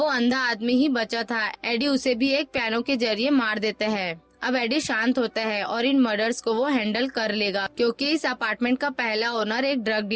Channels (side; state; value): both; identical; correlation 1.00